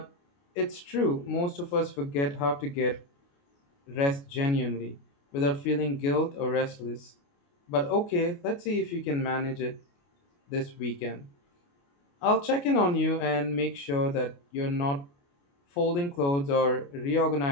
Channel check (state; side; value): late; right; 29 ms